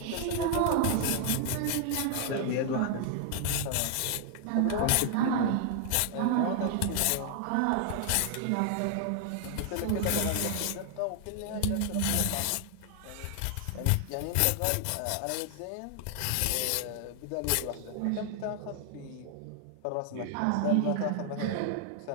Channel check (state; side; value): different; both; correlation 0.00